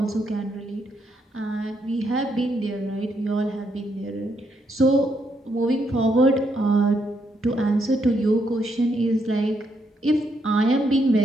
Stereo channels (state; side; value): normal; both; correlation 0.77